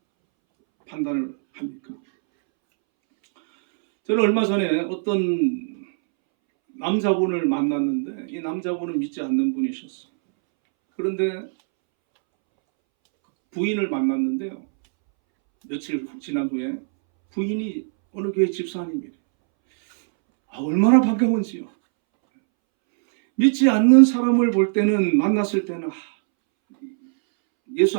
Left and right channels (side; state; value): left; silent; 64 dB below the other